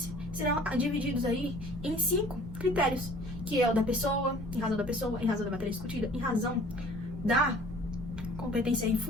serão divididos aí em 5 critérios, que é o da pessoa, em razão da pessoa, em razão da matéria discutida, em razão da competência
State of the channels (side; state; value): right; noise; rumble, 12 dB below the sound